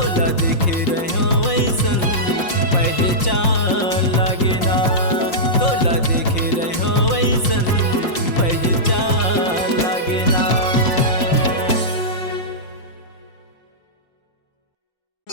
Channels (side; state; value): right; late; 5.6 ms